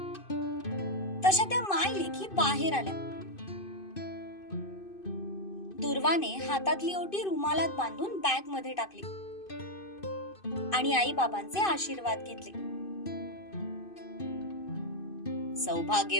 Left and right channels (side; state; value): right; late; 2.5 ms